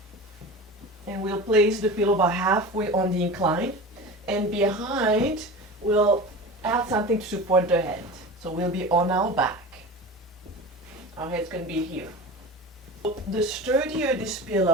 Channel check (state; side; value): normal; both; correlation 0.32